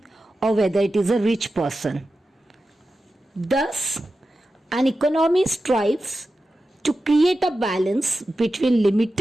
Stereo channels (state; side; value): normal; both; correlation 0.92